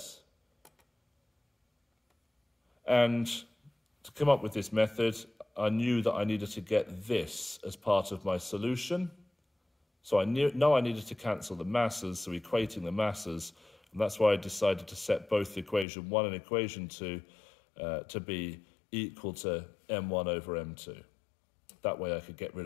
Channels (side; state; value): right; drops out; at 15.9 s